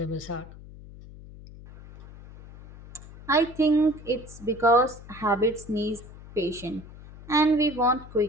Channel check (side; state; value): left; noise; hum, 17 dB below the sound